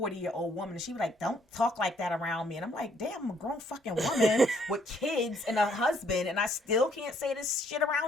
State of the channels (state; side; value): normal; both; correlation 0.67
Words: woman. And she was like, don't talk like that around me. And I'm like, damn, I'm a grown fucking woman with kids and a husband. And I still can't say this shit